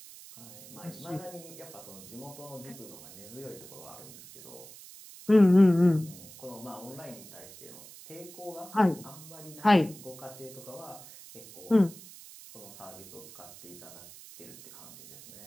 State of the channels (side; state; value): right; noise; hiss, 17 dB below the sound